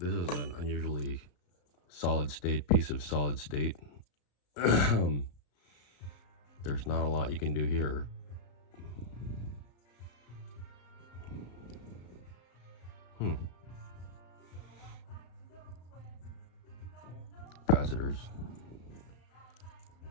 is an unusually solid state piece of solid state. There's not a lot you can do here. Capacitors.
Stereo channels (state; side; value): late; right; 34 ms